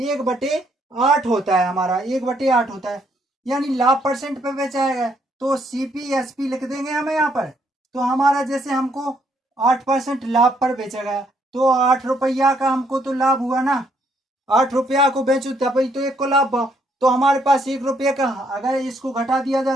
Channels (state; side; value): normal; both; correlation 0.70